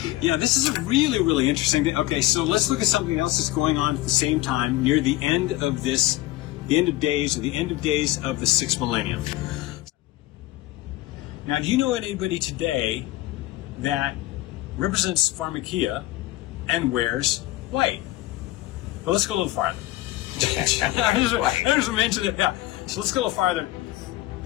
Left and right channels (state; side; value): quieter; right; 16.9 dB